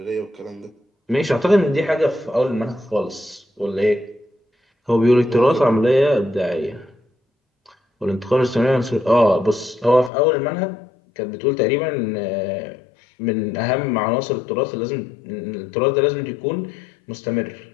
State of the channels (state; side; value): drops out; right; at 10.1 s